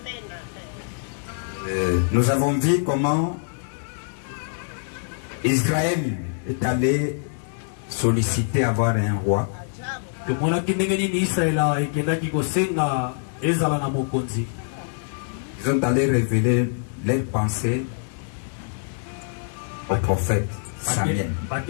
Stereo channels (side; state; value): right; silent; digital silence